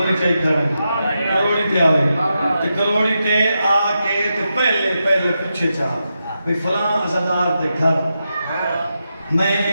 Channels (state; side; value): inverted; both; correlation -0.87